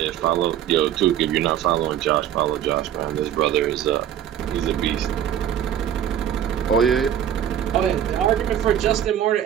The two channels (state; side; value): quieter; left; 10.2 dB